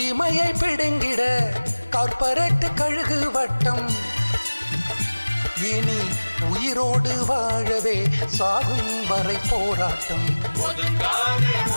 பிடுங்கிட கார்ப்பரேட் கழுகு வட்டம். இனி உயிரோடு வாழவே சாகும் வரை போராட்டம். ஒதுங்காதே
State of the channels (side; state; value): both; inverted; correlation -1.00